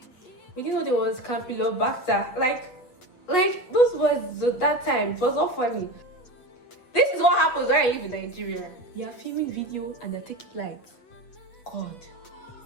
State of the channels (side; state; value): right; late; 7.9 ms